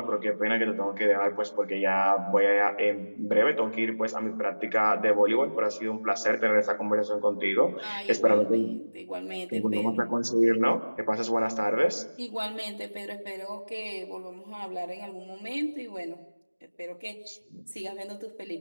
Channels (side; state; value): both; inverted; correlation -1.00